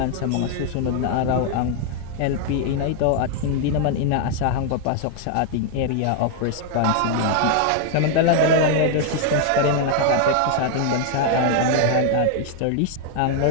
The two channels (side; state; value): both; different; correlation 0.00